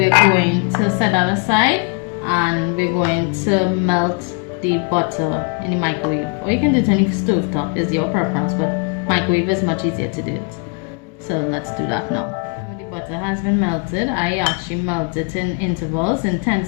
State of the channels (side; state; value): right; quieter; 34.4 dB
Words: going to set that aside and we're going to melt the butter in the microwave, or you can do it on the stove top, is your preference, but microwave is much easier to do it. So let's do that now. When the butter has been melted, I actually melt it in intervals, in